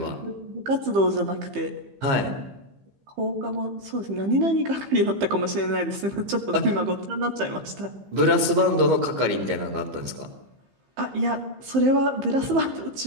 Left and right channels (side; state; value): left; late; 15 ms